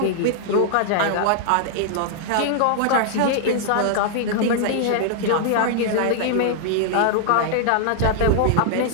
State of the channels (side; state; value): both; different; correlation -0.01